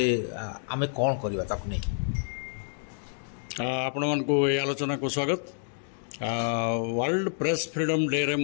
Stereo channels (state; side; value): silent; right; digital silence